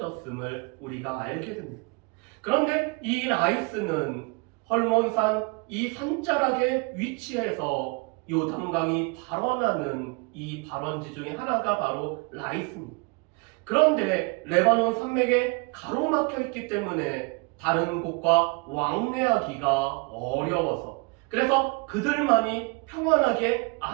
우리가 알게 됩니다. 그런데 이 라이스는 헐몬산 이 산자락에 위치해서 요단강이 발원하는 이 발원지 중에 하나가 바로 라이스입니다. 그런데 레바논 산맥에 가로막혀 있기 때문에 다른 곳과 왕래하기가 어려워서 그래서 그들만이 평안하게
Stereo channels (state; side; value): quieter; left; 31.0 dB